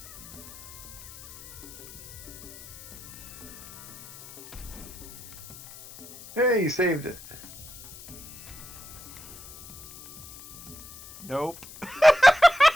Hey, you saved it. Nope.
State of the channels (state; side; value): noise; left; hiss, 16 dB below the sound